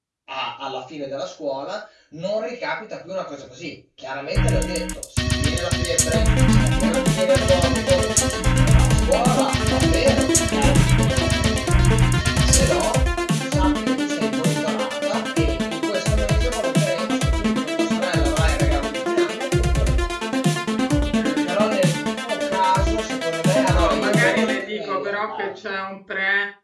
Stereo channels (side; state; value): both; identical; correlation 1.00